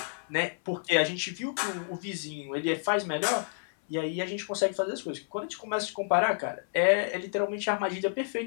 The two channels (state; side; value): silent; right; 58 dB below the other